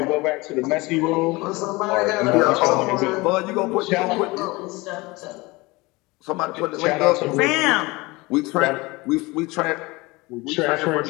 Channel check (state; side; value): quieter; right; 23.1 dB